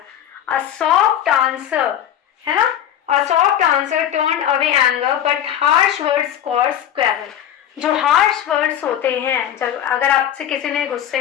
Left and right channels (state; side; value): quieter; right; 10.4 dB